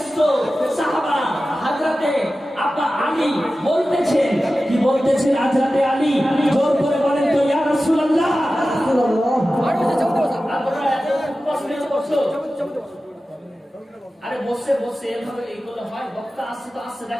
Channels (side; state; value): both; normal; correlation 0.94